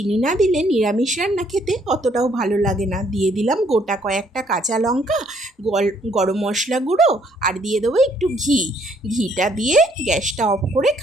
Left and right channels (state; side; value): normal; both; correlation 0.66